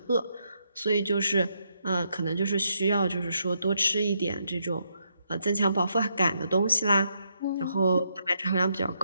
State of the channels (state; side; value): inverted; both; correlation -0.78